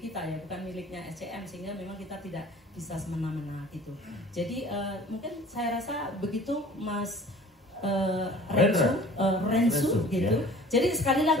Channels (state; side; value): normal; both; correlation 0.47